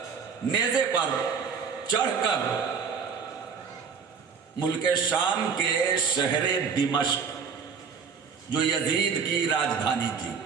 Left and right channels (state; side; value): quieter; left; 6.1 dB